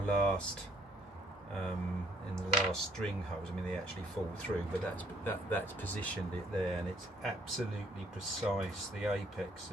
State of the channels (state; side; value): normal; both; correlation 0.65